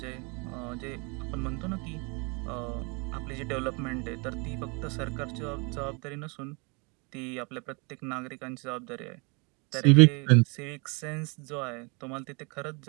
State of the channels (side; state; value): left; quieter; 31.9 dB